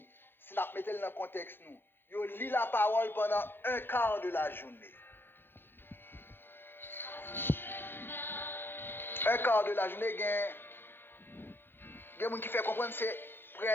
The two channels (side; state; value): right; late; 0.10 ms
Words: Si nous mettons dans le contexte, nous. Yo lit la parole pendant un quart de la journée. Un quart de la journée, il y a des gens qui fait comprendre que c'est